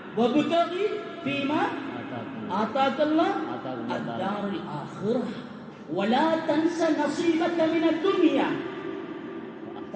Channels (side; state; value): both; identical; correlation 1.00